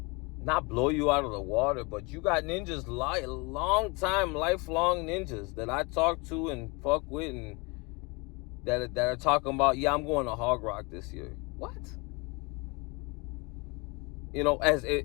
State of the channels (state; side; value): quieter; right; 28.0 dB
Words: not blow you out of the water? But you got ninjas, long time, lifelong ninjas that I talk to and fuck with, and that are talking about, yeah, I'm going to Hog Rock this year. What? You know, as